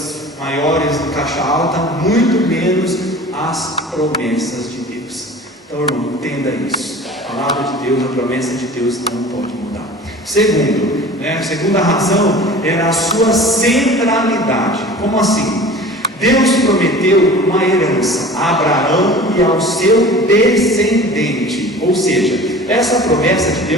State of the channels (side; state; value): both; normal; correlation 0.41